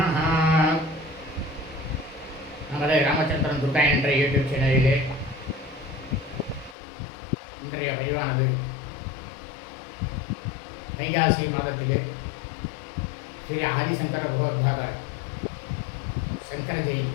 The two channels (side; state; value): right; drops out; at 6.8 s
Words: நமது ராமச்சந்திரன் துர்கா என்ற யூடியூப் சேனலிலே இன்றைய பதிவானது வைகாசி மாதத்திலே ஸ்ரீ ஆதிசங்கர பகவத்பாதர் சங்கர ஜெயந்தி